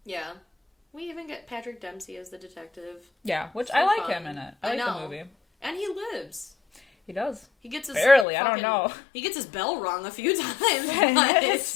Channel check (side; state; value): right; drops out; at 8.2 s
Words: Yeah. We even get Patrick Dempsey as the detective. Yeah, which So I like fun. him in it. I like the movie. And he lives. He does. He gets his barely. I don't know. He gets his bell rung a few times. His